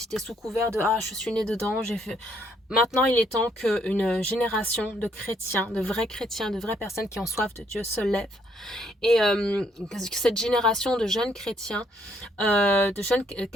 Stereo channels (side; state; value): both; normal; correlation 0.69